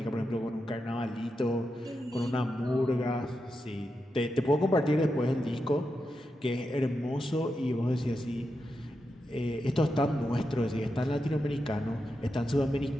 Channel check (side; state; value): both; normal; correlation 0.87